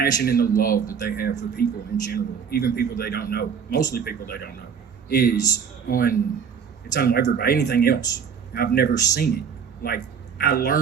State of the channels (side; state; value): left; quieter; 6.9 dB